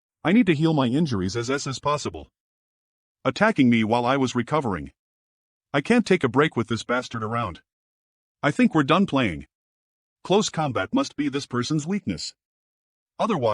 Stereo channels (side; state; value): both; identical; correlation 1.00